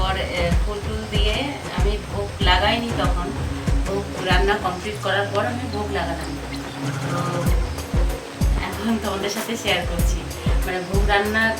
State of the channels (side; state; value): both; identical; correlation 1.00